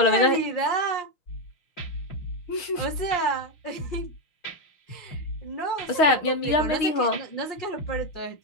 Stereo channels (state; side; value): late; right; 6.4 ms